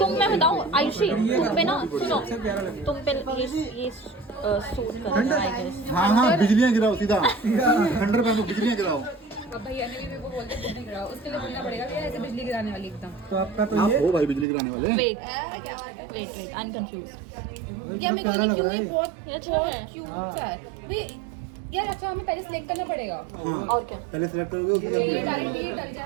मैं बताऊँ आयुषी, तुम पे ना, सुनो, तुम पे ये सूट कर रहा है आई गेस। हाँ हाँ, बिजलियाँ गिराओ सीधा, खंडर पहनो, बिजलियाँ गिराओ। अब भैया ने भी मेरे को बोलते बिजली गिराओ, उसके लिए बोलना पड़ेगा भैया ऐसे बिजली गिराने वाली एकदम। तो आपका तो आप ये हो भाई बिजली गिराने वाले। वेट क्या बात है वेट, आई एम कंफ्यूज। यार मेरे को नहीं क्यों, ये बहुत ये अच्छा है। क्यूट है भैया यार। अच्छा हमें पहले सिलेक्ट करना पड़ेगा और क्या? पहले सिलेक्ट करोगे उसके बाद ये डायरेक्ट ये डल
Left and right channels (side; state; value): left; drops out; at 14.5 s